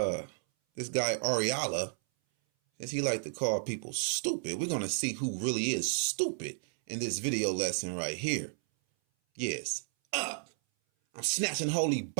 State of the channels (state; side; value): silent; left; 56 dB below the other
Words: Ariala, since he like to call people stupid, we're going to see who really is stupid in this video lesson right here. Yes, up. I'm snatching holy